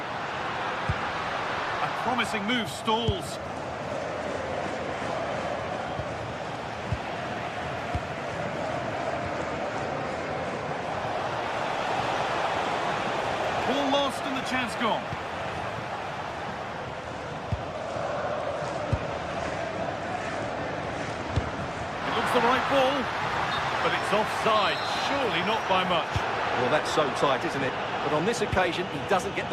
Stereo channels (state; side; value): identical; both; correlation 1.00